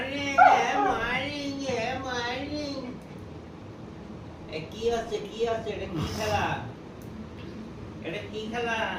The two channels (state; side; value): identical; both; correlation 1.00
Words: morning morning. কি আছে কি আছে? এটা কি খেলা? এটা কি খেলা?